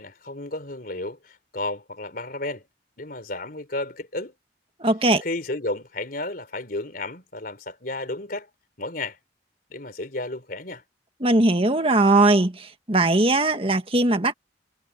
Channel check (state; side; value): normal; both; correlation 0.41